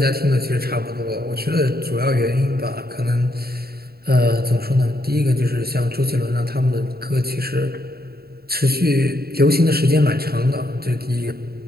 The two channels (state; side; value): late; left; 0.45 ms